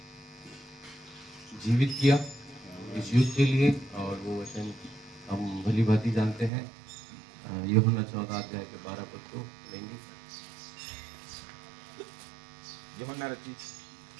जीवित किया इस युग के लिए, और वो वचन हम भली भांति जानते हैं। यूहन्ना 14 अध्याय के 12 पद को लेंगे। यूहन्ना रचित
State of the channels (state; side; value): drops out; left; at 6.5 s